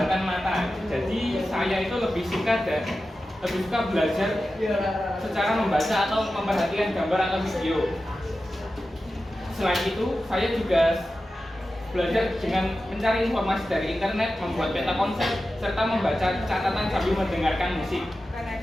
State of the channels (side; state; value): both; normal; correlation 0.93